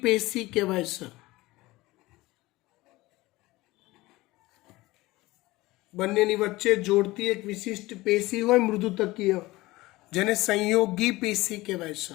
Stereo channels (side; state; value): right; quieter; 19.7 dB